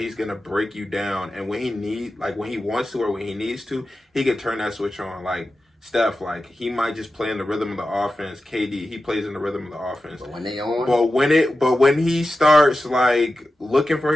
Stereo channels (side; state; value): both; normal; correlation 0.93